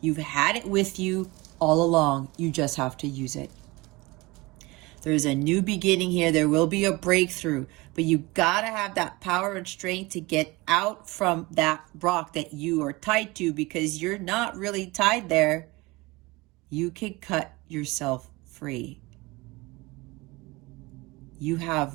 You've had it with you all along. You just have to use it. There's a new beginning here. There will be a breakthrough, but you gotta have that power and strength to get out from that rock that you are tied to, because you're not really tied there. You can cut yourself free. You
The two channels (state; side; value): quieter; left; 22.9 dB